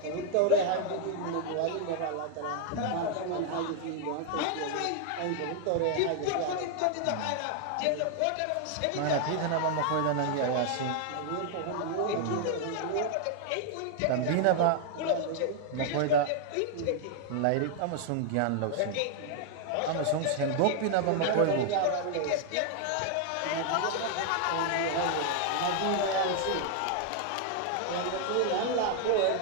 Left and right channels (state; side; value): different; both; correlation 0.00